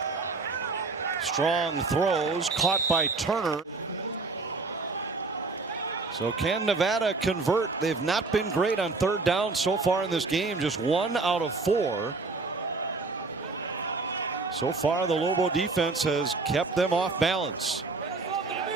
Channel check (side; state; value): left; quieter; 3.8 dB